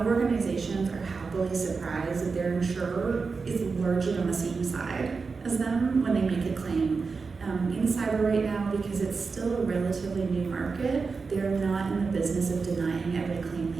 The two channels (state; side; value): quieter; left; 4.7 dB